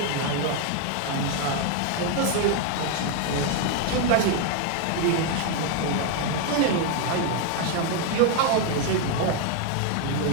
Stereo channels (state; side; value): different; both; correlation 0.01